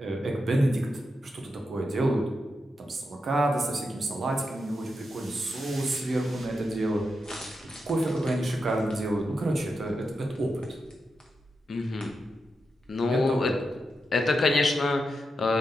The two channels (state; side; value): normal; both; correlation 0.87